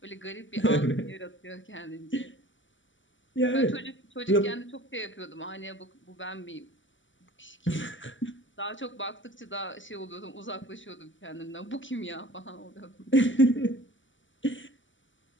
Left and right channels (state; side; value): late; right; 0.55 ms